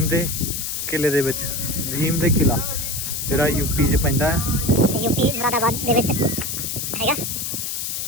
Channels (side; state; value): left; noise; hiss, 3 dB below the sound